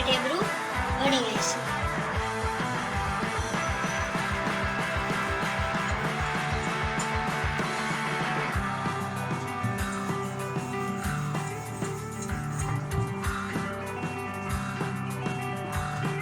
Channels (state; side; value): identical; both; correlation 1.00